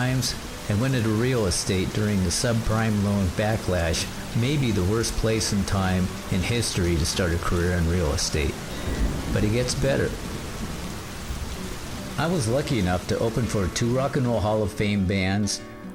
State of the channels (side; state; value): both; identical; correlation 1.00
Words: and went into real estate during the subprime loan backlash, maybe the worst place and time in history to start a career in real estate. But it gets better. I was lucky enough to open for 2 Rock and Roll Hall of Fame bands.